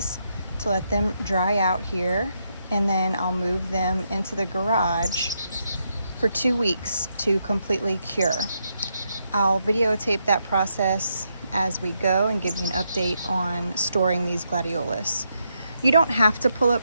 to let them dry out here, and then I'll move them into the garage for 2 weeks to completely cure. I'll videotape that process as we go and give you an update on storing these Gladiolus. You don't have to pull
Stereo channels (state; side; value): inverted; both; correlation -0.80